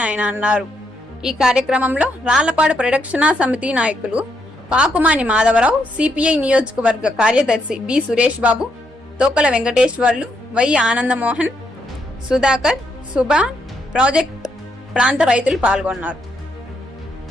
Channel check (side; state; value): both; normal; correlation 0.78